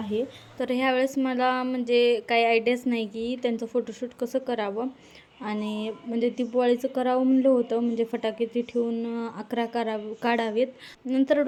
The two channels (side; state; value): both; identical; correlation 1.00